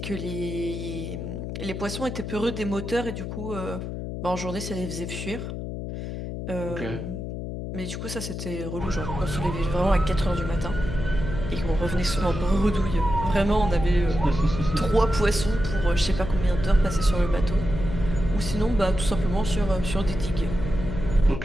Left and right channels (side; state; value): left; noise; hum, 6 dB below the sound